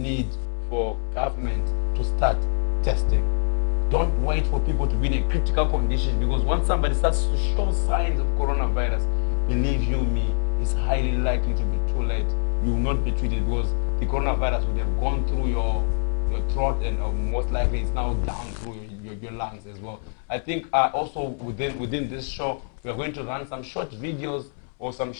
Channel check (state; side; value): silent; right; 62 dB below the other